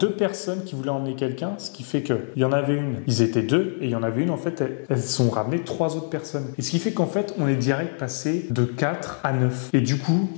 personnes qui voulaient emmener quelqu'un, ce qui fait que il y en avait une, ils étaient 2, et il y en avait une, en fait, elles sont ramenées 3 autres personnes. Et ce qui fait qu'en fait, on est direct passé de 4 à 9. Et du coup,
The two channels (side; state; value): right; silent; digital silence